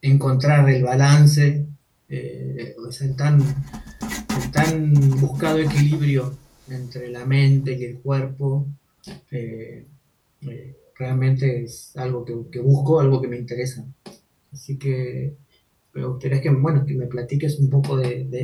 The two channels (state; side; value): identical; both; correlation 1.00